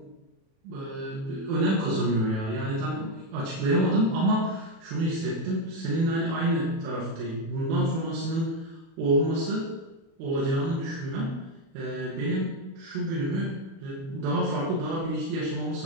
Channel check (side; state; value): left; late; 36 ms